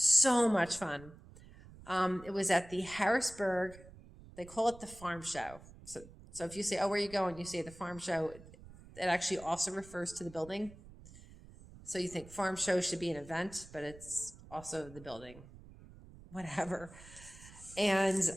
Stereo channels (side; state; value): right; noise; rumble, 19 dB below the sound